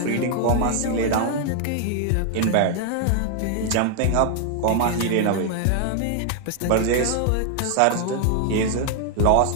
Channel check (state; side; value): different; both; correlation 0.00